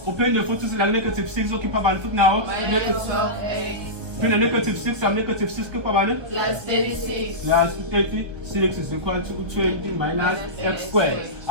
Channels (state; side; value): late; left; 1.2 ms